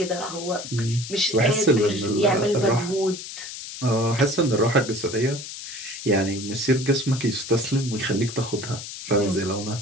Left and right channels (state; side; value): noise; left; hiss, 10 dB below the sound